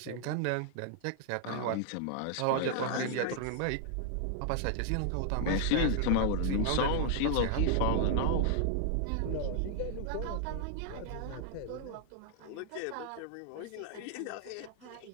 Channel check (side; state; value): both; different; correlation 0.00